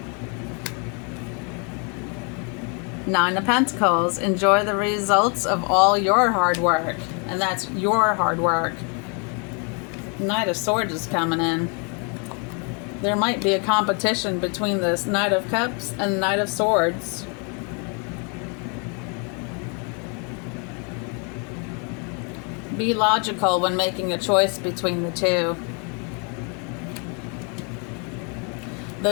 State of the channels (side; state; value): right; quieter; 36.2 dB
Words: Nine of Pentacles. Enjoy the results of all your hard work. And that's your hard work. Knight of Swords is coming in. There might be a competition between this Knight of Cups and Knight of Swords. Be logical when making a choice between the two.